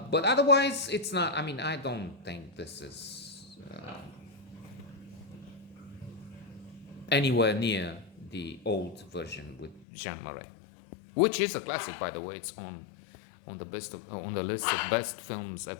otherwise, it's not. I mean, I don't think this is anywhere near the old version with Jean Marais, which is a classic, by the way. It's on the list of best films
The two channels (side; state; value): right; drops out; at 9.9 s